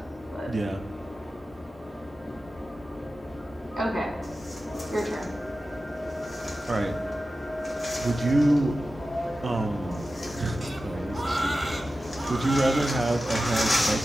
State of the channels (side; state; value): both; normal; correlation 0.94